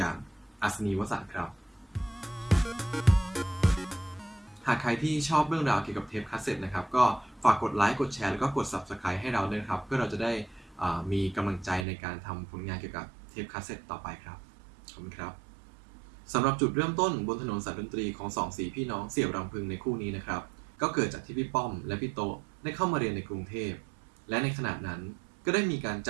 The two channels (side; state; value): left; drops out; at 11.9 s